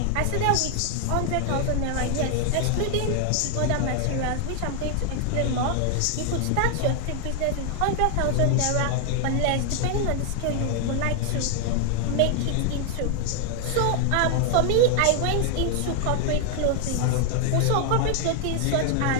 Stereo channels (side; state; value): both; different; correlation 0.00